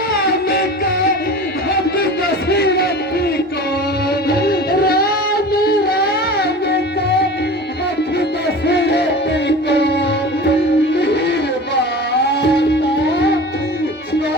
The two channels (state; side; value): normal; both; correlation 0.36